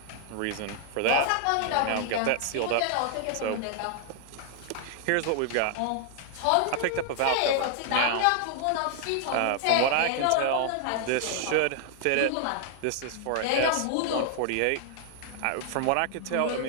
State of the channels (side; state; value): both; different; correlation 0.00